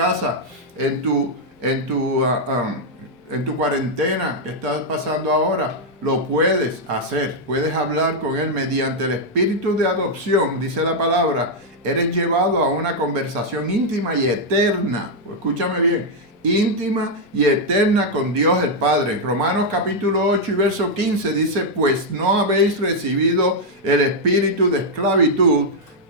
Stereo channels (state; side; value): normal; both; correlation -0.02